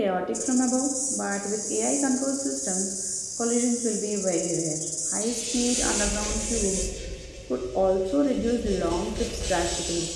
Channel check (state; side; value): identical; both; correlation 1.00